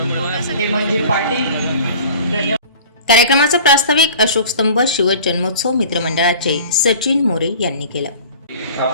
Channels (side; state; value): both; inverted; correlation -0.44